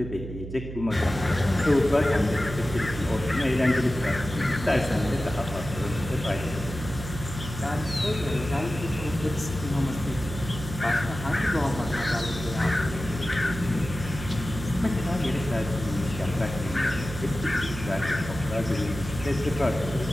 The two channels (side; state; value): right; noise; hum, 9 dB below the sound